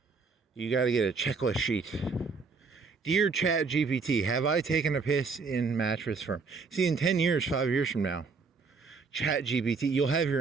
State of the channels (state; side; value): quieter; left; 4.7 dB